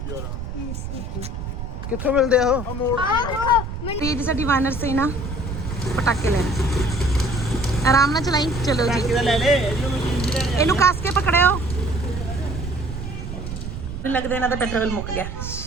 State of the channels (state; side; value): noise; right; rumble, 7 dB below the sound